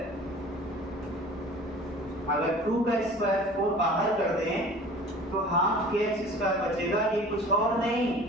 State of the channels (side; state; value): both; normal; correlation 0.44